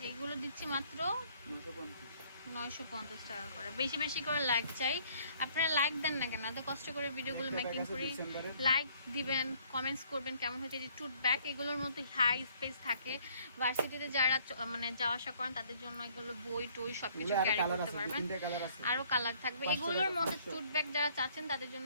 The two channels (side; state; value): both; inverted; correlation -0.62